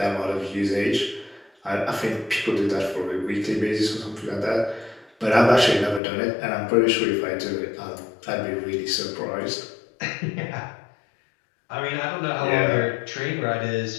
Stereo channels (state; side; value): drops out; right; at 6.0 s